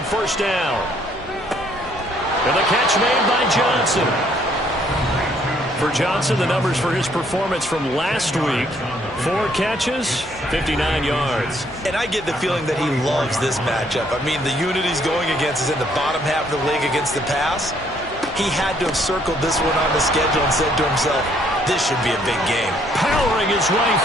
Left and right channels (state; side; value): normal; both; correlation 0.66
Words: first down. And the catch made by Johnson. For Johnson, the numbers for his performance from last week: 4 catches, 59 yards. And I get the feeling that he loves this matchup. I mean, the unit he's going against is in the bottom half of the league against the pass. He had to have circled this one on the schedule and said to himself, this should be a big game. Powering his way